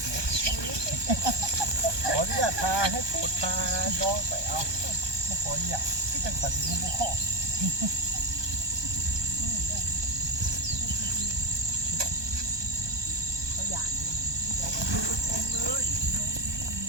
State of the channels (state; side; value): late; left; 1.2 ms